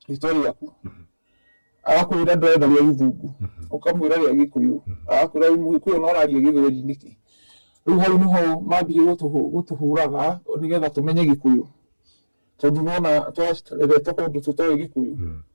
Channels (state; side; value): inverted; both; correlation -1.00